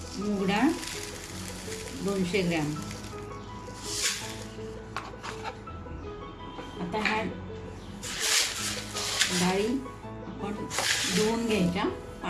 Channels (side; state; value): both; identical; correlation 1.00